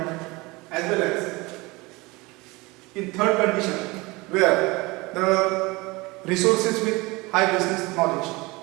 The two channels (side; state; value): left; quieter; 23.6 dB